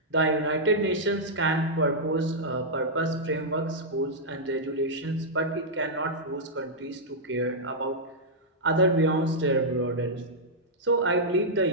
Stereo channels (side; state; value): both; normal; correlation -0.08